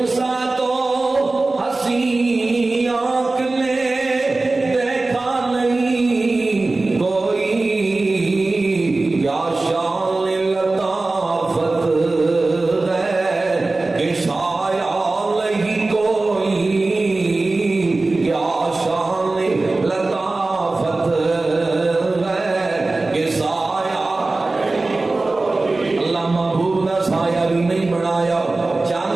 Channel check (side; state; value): left; quieter; 3.2 dB